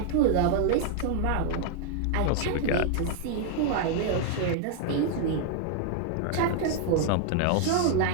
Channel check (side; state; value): both; different; correlation 0.00